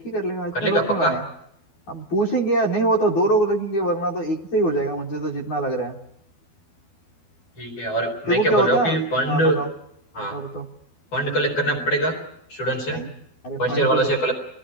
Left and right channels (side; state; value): right; late; 12 ms